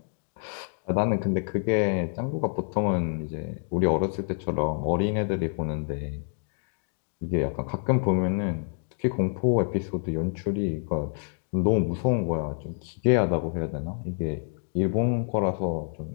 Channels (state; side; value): silent; right; 60 dB below the other